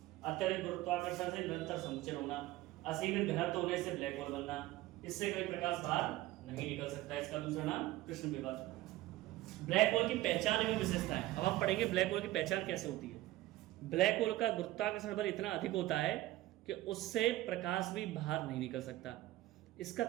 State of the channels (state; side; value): quieter; left; 16.8 dB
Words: अत्यधिक गुरुत्वाकर्षण से निरंतर संकुचन होना, असीमित घनत्व होने से ब्लैक होल बनना, इससे कोई प्रकाश बाहर नहीं निकल सकता। इसका दूसरा नाम कृष्ण विवर। ब्लैक होल की पहचान एवं विशेषताएं। अब हम पढ़ेंगे ब्लैक होल की पहचान कैसे होती है। ब्लैक होल का गुरुत्वाकर्षण बल इतना अधिक होता है कि उससे प्रकाश भी बाहर नहीं निकल सकता। इसका